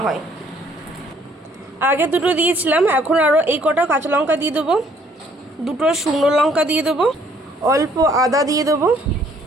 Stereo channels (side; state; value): both; normal; correlation 0.63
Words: হয়। আগে দুটো দিয়েছিলাম, এখন আরও এই কটা কাঁচা লঙ্কা দিয়ে দেবো, দুটো শুকনো লঙ্কা দিয়ে দেবো, অল্প আদা দিয়ে দেবো,